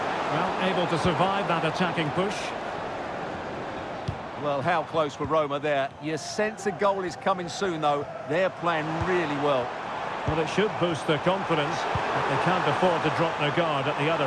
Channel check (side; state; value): both; identical; correlation 1.00